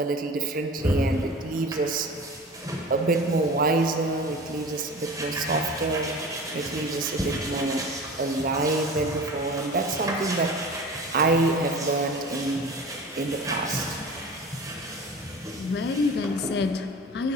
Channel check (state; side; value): normal; both; correlation 0.37